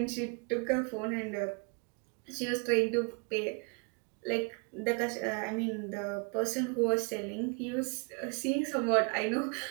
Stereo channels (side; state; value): left; quieter; 35.0 dB